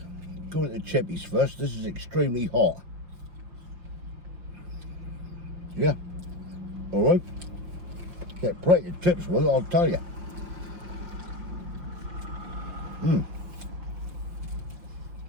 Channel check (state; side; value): late; left; 5.7 ms